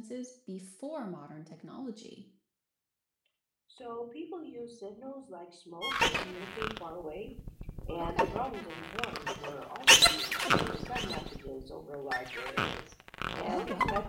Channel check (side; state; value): both; identical; correlation 1.00